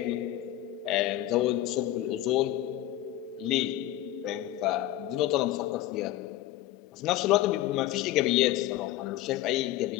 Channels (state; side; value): quieter; right; 14.2 dB